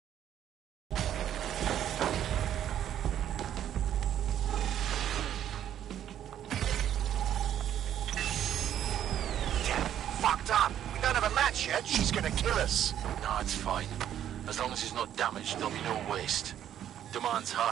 Fucked up! We don't have a match yet. She's gonna kill us. No, it's fine. As long as he's not damaged, there'll be no waste. Demand's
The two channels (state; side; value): quieter; left; 10.6 dB